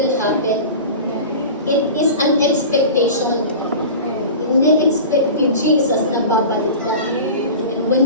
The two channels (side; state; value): both; inverted; correlation -0.34